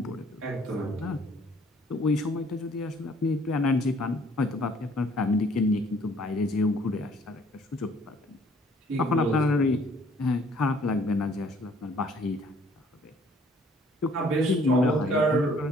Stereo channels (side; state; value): both; normal; correlation 0.59